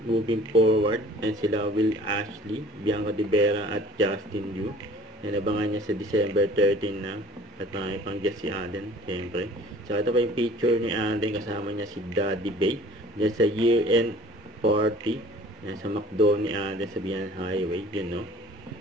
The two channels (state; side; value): normal; both; correlation 0.49